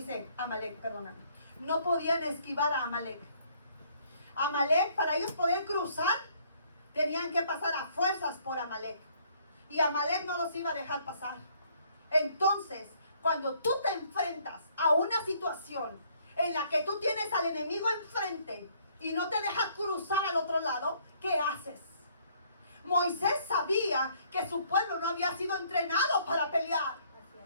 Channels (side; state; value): both; inverted; correlation -0.64